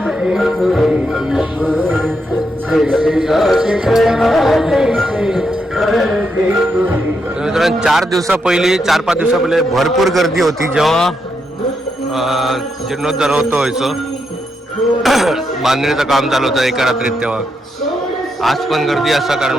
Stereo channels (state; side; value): normal; both; correlation 0.82